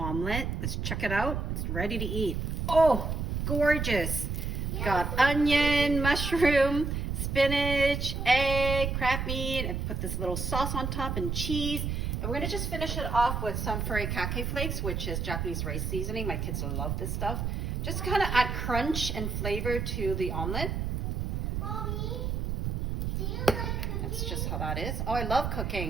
Let's check it out. It's ready to eat. Oh, gorgeous. Got onion, mushroom, spinach, egg, crab meat. I put this little sauce on top and cheese. And we're gonna just finish it off with some Furikake flakes, which is Japanese rice seasoning. My kids love this stuff. Just kind of add crunch and flavor to the omelet. Mommy, do you like cooking? That's just how that is. Oh, I love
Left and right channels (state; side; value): noise; right; rumble, 2 dB below the sound